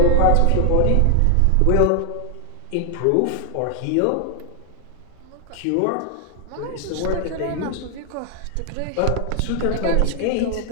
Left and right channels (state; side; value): different; both; correlation 0.00